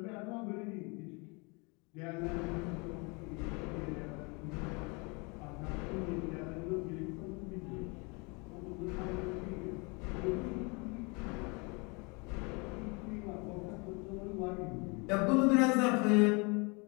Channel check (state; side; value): quieter; right; 30.1 dB